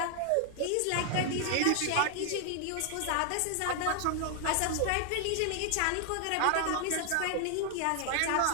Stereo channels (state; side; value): different; both; correlation 0.00